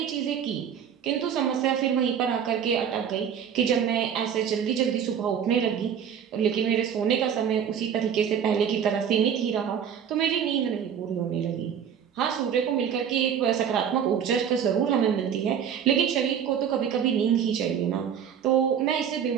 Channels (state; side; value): quieter; left; 8.2 dB